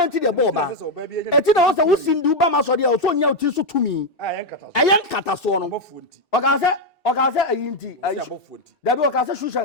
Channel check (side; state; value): both; normal; correlation 0.03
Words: nti de bo ba. Eti na wo se wo sindu ba ma so de o so nya uti so tumi. Ayen kata so no. Oka se ayinti dabi oka se